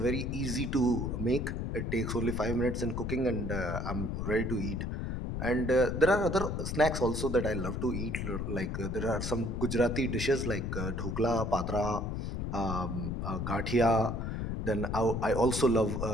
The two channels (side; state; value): left; noise; rumble, 2 dB below the sound